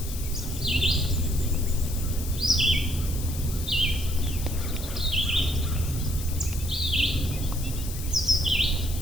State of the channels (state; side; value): noise; left; hiss, 10 dB below the sound